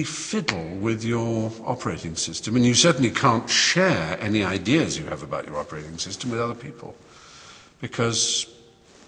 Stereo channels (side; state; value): both; identical; correlation 1.00